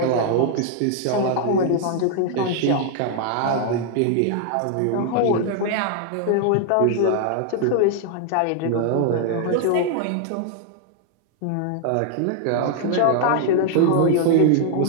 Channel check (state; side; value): different; both; correlation 0.00